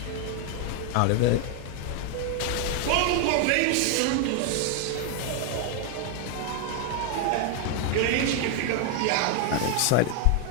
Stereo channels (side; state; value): both; different; correlation 0.00